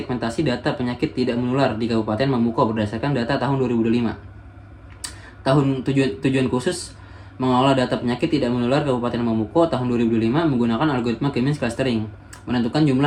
data penyakit tidak menular di Kabupaten Mamuko berdasarkan data tahun 2005. Tujuan khusus mengolah data penyakit tidak menular Kabupaten Mamuko tahun 2005 menggunakan algoritma K-means clustering. Menentukan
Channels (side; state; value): both; identical; correlation 1.00